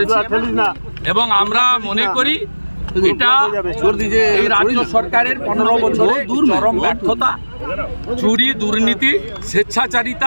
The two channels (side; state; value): both; inverted; correlation -1.00